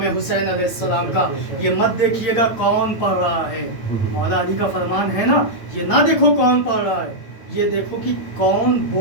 حسین علیہ السلام کا، یہ مت دیکھیے گا کون پڑھ رہا ہے، مولا علی کا فرمان ہے نا، یہ نہ دیکھو کون پڑھ رہا ہے، یہ دیکھو کہ کون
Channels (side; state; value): right; late; 8.9 ms